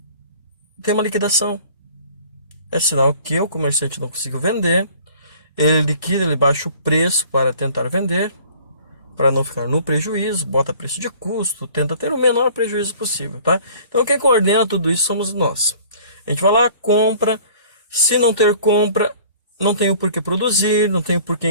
tem uma liquidação. É sinal que o comerciante não conseguiu vender. Ele liquida, ele baixa o preço para tentar vender, para não ficar no prejuízo, bota preço de custo, tenta ter o menor prejuízo possível, tá? Então quem coordena tudo isso somos nós. A gente vai lá, compra. Se não ter compra, não tem o porquê produzir, não tem o porquê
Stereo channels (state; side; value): inverted; both; correlation -0.51